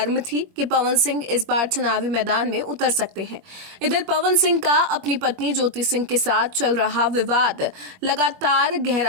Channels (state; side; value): late; left; 21 ms